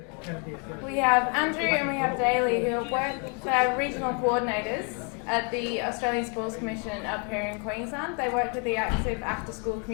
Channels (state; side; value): quieter; right; 37.3 dB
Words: We have Andrew and we have Daly, who are regional coordinators at the Australian Sports Commission up here in Queensland. They work with the active after-school